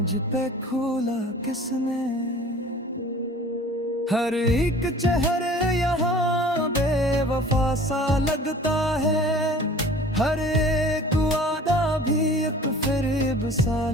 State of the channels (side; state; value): both; normal; correlation 0.46